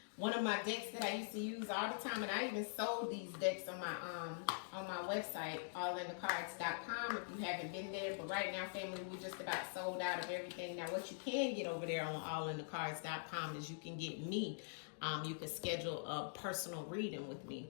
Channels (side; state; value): right; silent; digital silence